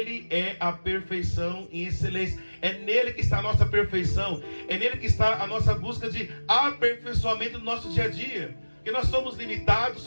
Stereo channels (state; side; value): inverted; both; correlation -1.00